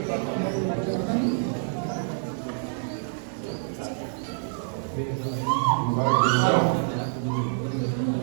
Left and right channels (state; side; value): silent; left; digital silence